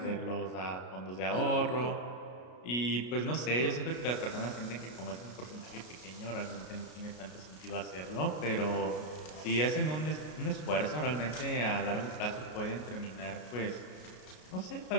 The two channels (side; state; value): right; late; 33 ms